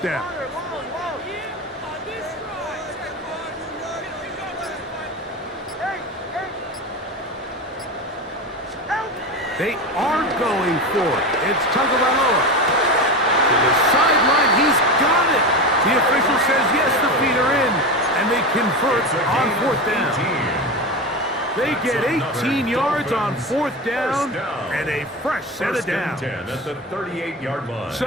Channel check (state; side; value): normal; both; correlation 0.23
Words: down. They are going for it. It's Tagovailoa. To the sideline, he's got it. The official says yes, the feet are in, and they convert on 4th down. They get 18 yards on fourth down and a fresh set of downs. 10 at the 38-yard line.